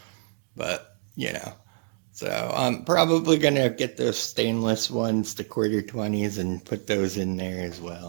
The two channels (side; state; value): left; silent; digital silence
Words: But, so I'm probably going to get those stainless ones, the quarter 20s, and put those in there as